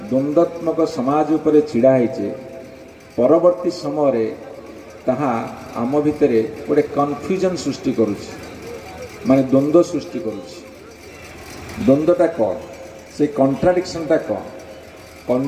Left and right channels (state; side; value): identical; both; correlation 1.00